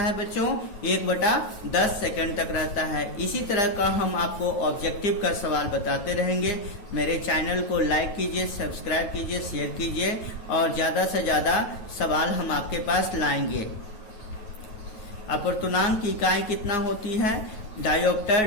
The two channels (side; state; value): right; late; 9.3 ms